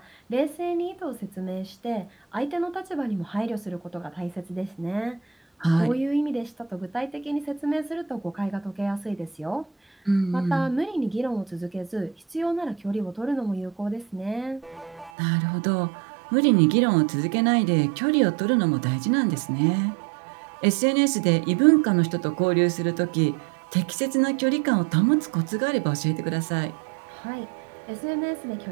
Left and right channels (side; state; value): left; drops out; at 15.1 s